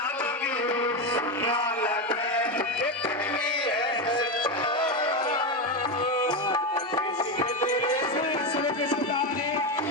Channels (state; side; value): normal; both; correlation 0.12